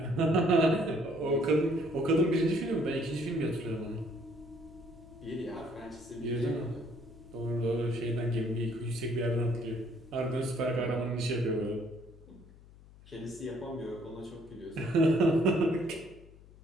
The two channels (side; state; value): left; noise; hum, 22 dB below the sound